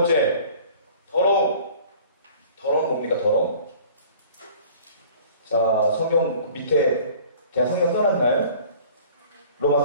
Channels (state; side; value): inverted; both; correlation -0.48